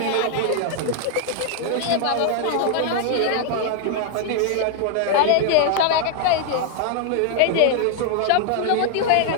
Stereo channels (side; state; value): both; different; correlation 0.00